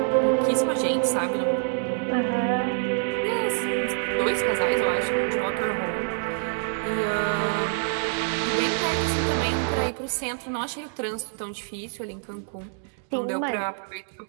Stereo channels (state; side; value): silent; left; digital silence